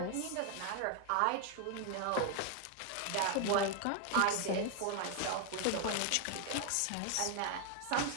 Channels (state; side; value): different; both; correlation 0.00